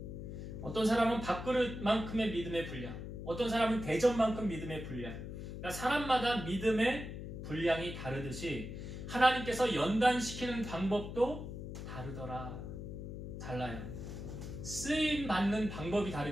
어떤 사람은 밥그릇만큼의 믿음의 분량. 어떤 사람은 대접만큼 믿음의 분량. 그러니까 사람마다 믿음의 분량이 다르듯이 하나님께서 연단시키는 방법도 달라요. 쓰임 받는 방법이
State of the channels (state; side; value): noise; left; hum, 8 dB below the sound